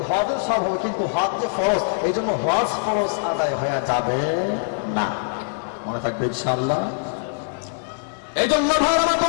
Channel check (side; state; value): right; silent; digital silence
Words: হজের সব হবে, কিন্তু হজ যে ফরজ, এই জন্য হজ ফরজ আদায় হয়ে যাবে না। মনে থাকবে ইনশাআল্লাহ। এই জন্য ভাইরা